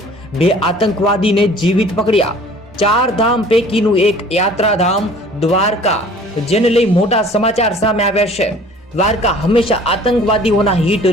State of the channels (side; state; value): both; normal; correlation 0.50